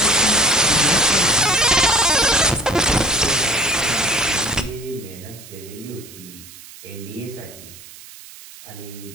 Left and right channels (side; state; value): right; noise; hiss, 18 dB below the sound